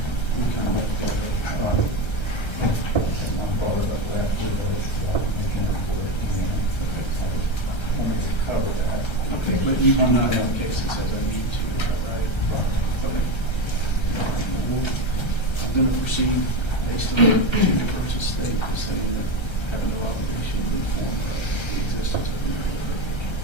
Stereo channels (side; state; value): right; late; 1.3 ms